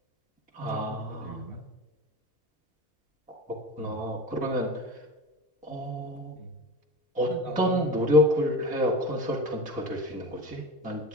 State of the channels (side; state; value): both; normal; correlation 0.30